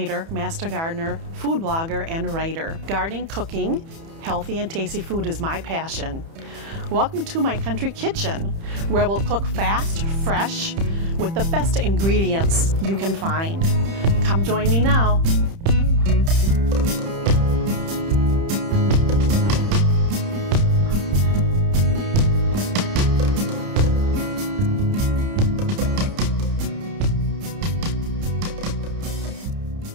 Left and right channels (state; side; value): late; left; 30 ms